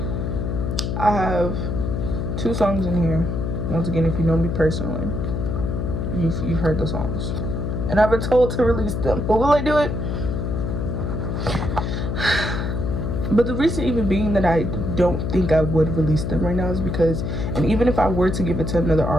I have 2 songs in here. Once again, if you know me personally, you've heard the songs, and I've been told to release them, but will I do it? But the reason even being that I don't think I would release them right now is because, and even if I were to give it to another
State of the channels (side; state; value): left; noise; hum, 2 dB below the sound